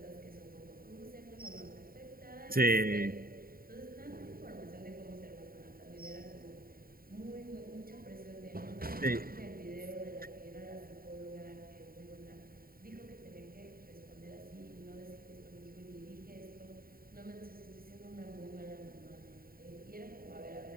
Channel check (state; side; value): late; left; 0.43 ms